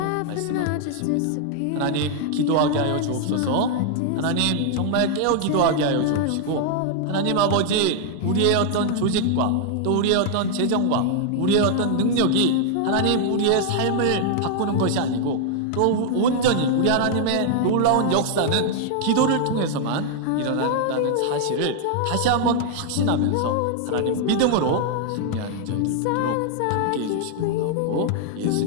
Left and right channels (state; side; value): different; both; correlation 0.00